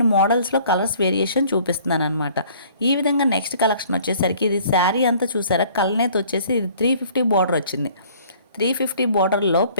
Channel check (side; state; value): both; inverted; correlation -0.55